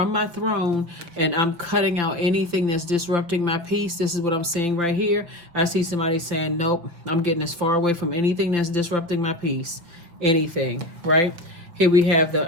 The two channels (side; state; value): left; late; 5.8 ms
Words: my throne and I'm cutting out anything that's disrupting my peace. This is what I'm seeing right here. I see somebody saying, nope, I'm getting as far away from anything that's disrupting my peace. Anything, right? Here we have